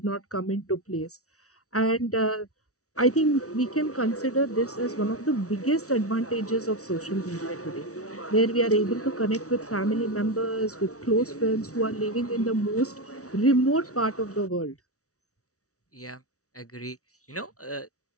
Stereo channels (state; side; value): late; right; 0.65 ms